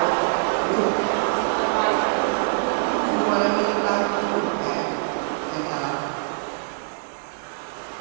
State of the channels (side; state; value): left; silent; digital silence